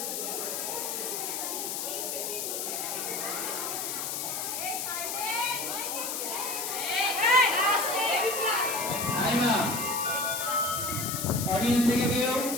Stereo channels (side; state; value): left; noise; hiss, 3 dB below the sound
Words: অডিয়েন্স থেকে কেউ?